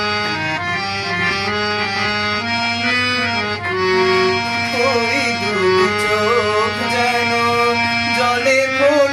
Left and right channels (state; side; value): identical; both; correlation 1.00